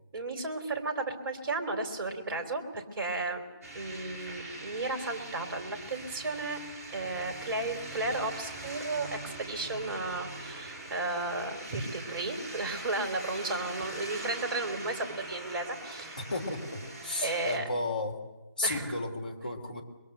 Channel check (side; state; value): both; inverted; correlation -0.36